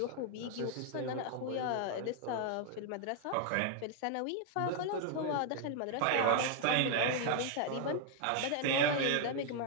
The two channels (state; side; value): different; both; correlation 0.00